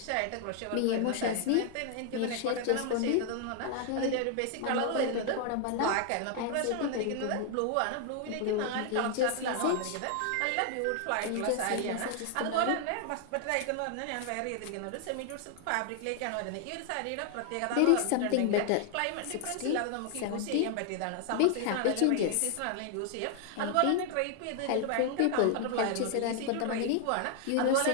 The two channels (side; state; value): both; different; correlation 0.00